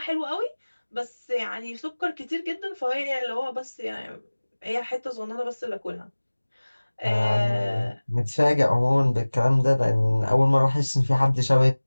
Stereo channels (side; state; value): both; inverted; correlation -1.00